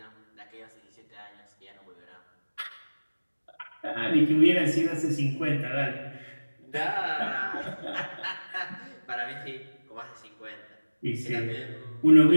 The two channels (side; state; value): both; inverted; correlation -1.00